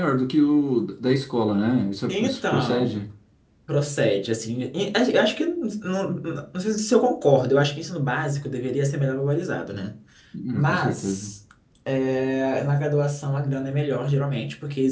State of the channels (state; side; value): identical; both; correlation 1.00